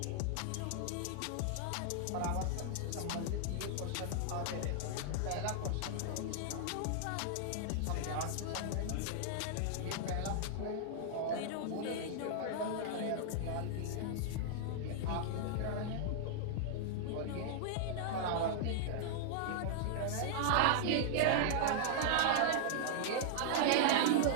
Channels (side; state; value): both; different; correlation -0.01